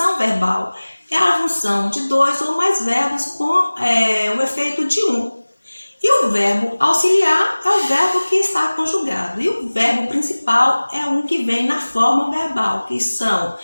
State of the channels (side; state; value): both; inverted; correlation -1.00